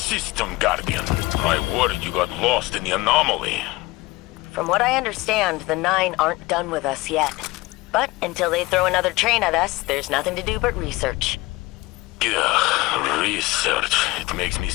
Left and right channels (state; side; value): quieter; right; 21.2 dB